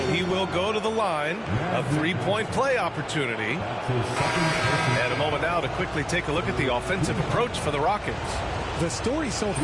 he will go to the line. A 3-point play opportunity. And a moment now to quickly take a look at the offensive approach for the Rockets. The story so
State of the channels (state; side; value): identical; both; correlation 1.00